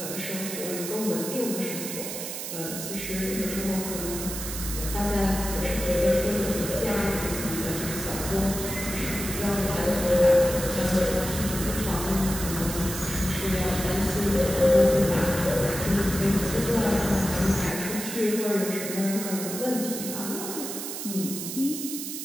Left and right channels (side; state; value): right; noise; hiss, 6 dB below the sound